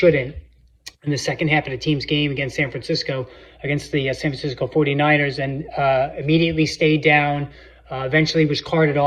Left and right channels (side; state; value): both; identical; correlation 1.00